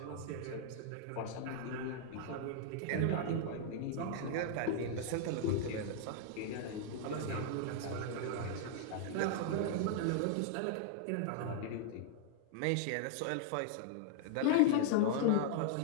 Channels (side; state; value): both; different; correlation -0.01